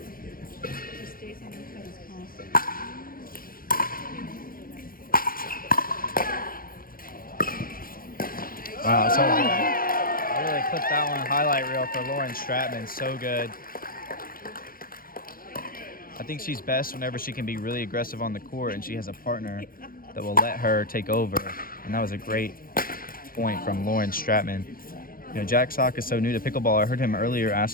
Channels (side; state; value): right; late; 0.42 ms